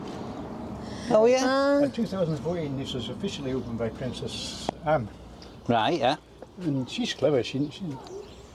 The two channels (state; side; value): identical; both; correlation 1.00